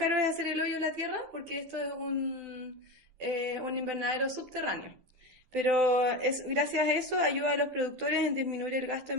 es hacer el hoyo en la tierra, porque esto es un invernadero subterráneo. Pero gracias a eso ayuda a los productores en disminuir el gasto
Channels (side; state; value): left; late; 12 ms